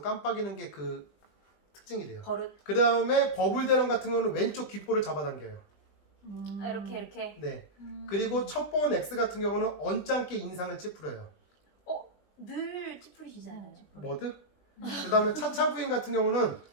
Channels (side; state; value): right; late; 20 ms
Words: 깜빡이는 게 그 특징이래요. 버릇. 그 다음에 버블대령 같은 경우는 왼쪽 귓볼을 잡아당겨요. 이렇게. 네. 그리고 첩보원 X 같은 경우는 언짢게 인상을 찌푸려요. 늘 찌푸리시잖아요. 뭐드? 그 다음에 차차 부인 같은 경우는